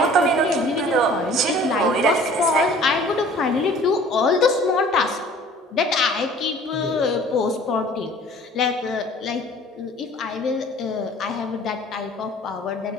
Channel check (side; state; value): both; normal; correlation 0.50